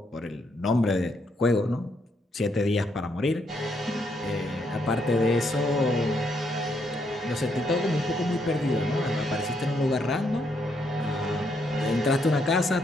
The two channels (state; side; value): normal; both; correlation 0.75